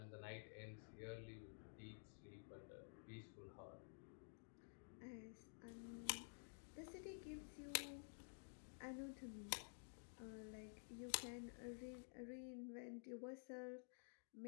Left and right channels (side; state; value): right; silent; digital silence